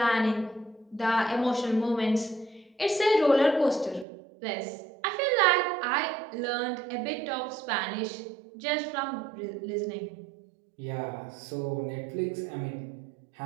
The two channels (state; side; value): drops out; left; at 4.0 s